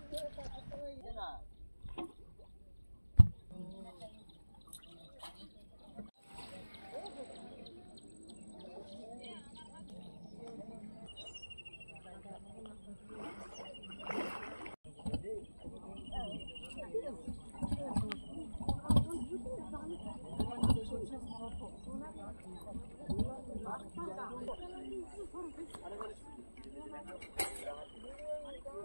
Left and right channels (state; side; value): inverted; both; correlation -1.00